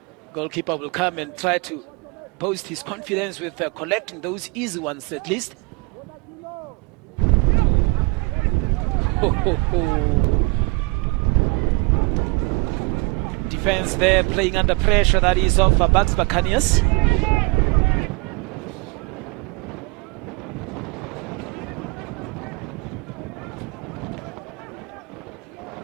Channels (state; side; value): quieter; left; 27.8 dB